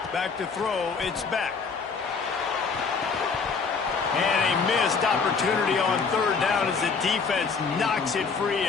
Back to throw, it's back. And a missed opportunity on 3rd down as the defense knocks it free,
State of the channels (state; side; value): quieter; right; 5.1 dB